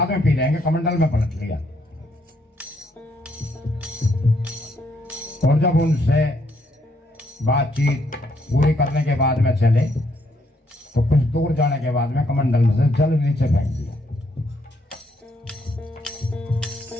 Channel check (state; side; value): normal; both; correlation 0.72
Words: में पी लेंगे। कमंडल में पलट लिया और जब उनसे बातचीत पूरी करने के बाद में चले तो कुछ दूर जाने के बाद में कमंडल में से जल नीचे फेंक दिया।